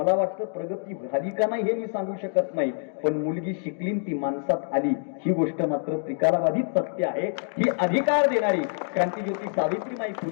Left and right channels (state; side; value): silent; right; 61 dB below the other